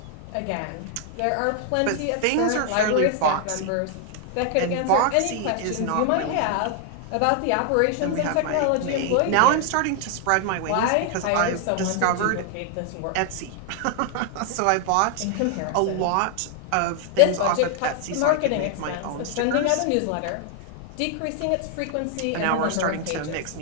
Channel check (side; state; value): both; different; correlation 0.00